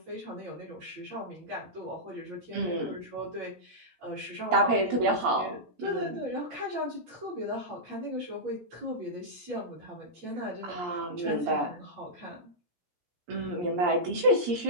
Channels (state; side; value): late; left; 17 ms